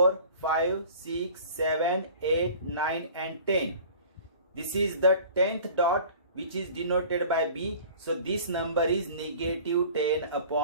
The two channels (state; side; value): inverted; both; correlation -0.45